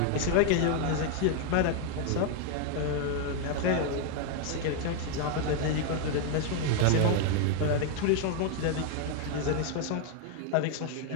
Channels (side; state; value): both; different; correlation 0.01